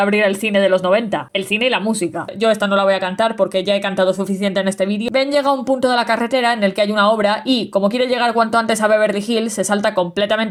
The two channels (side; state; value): both; identical; correlation 1.00